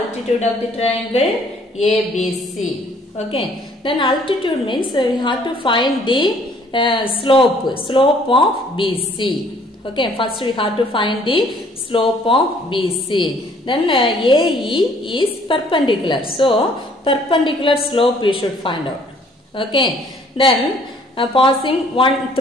of the triangle ABC. Okay, then altitude means we have to find the slope of BC. Okay, first we have to find the slope of BC. Then AE is perpendicular. So, perpendicular slope we should find out. Okay, then passing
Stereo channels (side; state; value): both; normal; correlation 0.60